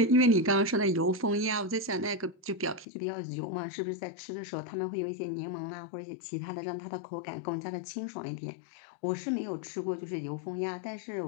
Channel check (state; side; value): drops out; right; at 2.9 s